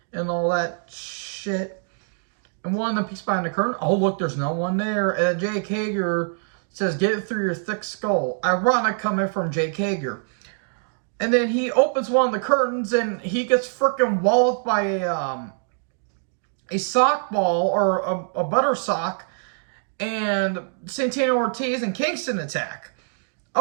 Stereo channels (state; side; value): silent; left; digital silence